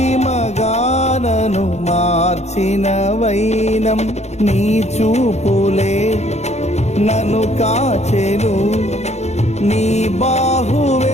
మార్చిన వైనం నీ చూపులే నన్ను కాచెను నీ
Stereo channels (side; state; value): right; late; 0.32 ms